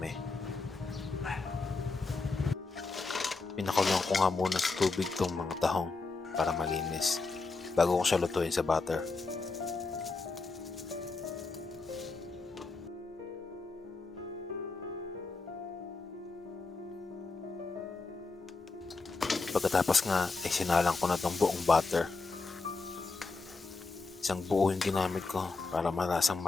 Pinakuloan ko nga muna sa tubig tong mga tahong para malinis bago ko siya lutuin sa butter. Pagkatapos nga ay sinalang ko na tong buong butter. Isang buo yung ginamit ko para malasang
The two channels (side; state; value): right; quieter; 4.0 dB